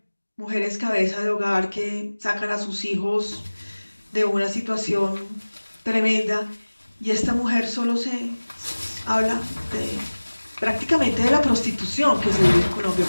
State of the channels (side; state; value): both; inverted; correlation -1.00